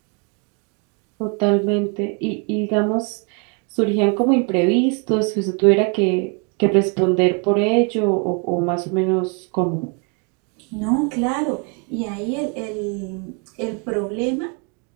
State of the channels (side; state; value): left; quieter; 34.8 dB